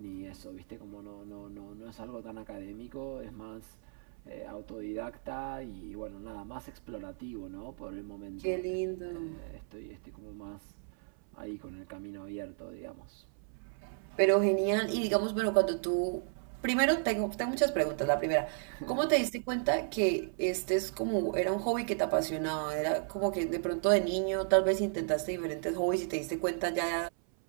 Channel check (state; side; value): silent; left; 55 dB below the other